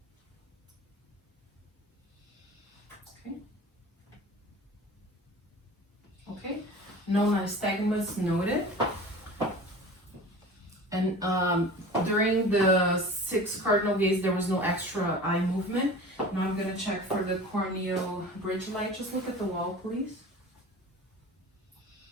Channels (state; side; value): normal; both; correlation 0.39